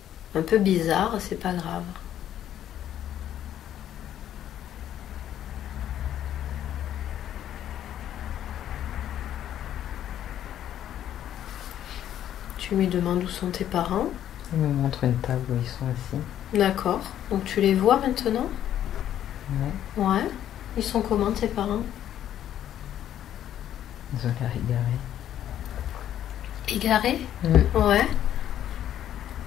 un peu bizarres, c'est pas grave. Tu lui demandes où sont tes parents. Il me montre une table où ils sont assis. D'accord. Donc tu les vois maintenant? Ouais. Ouais. Ils sont comment tes parents? Ils ont l'air égarés. Égarés? Ouais.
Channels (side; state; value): right; quieter; 11.0 dB